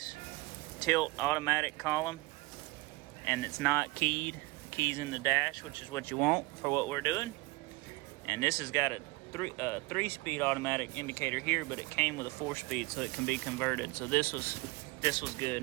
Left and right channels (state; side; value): quieter; left; 22.6 dB